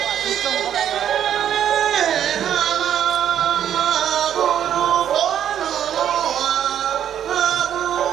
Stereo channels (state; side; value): quieter; left; 9.9 dB